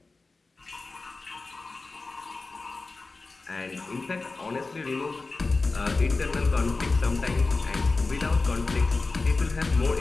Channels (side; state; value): right; quieter; 3.7 dB